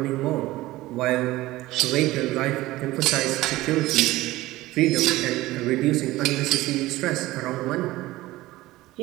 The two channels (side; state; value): left; quieter; 17.8 dB